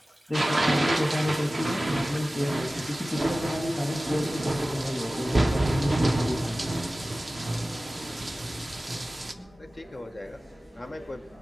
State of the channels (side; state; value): both; normal; correlation 0.97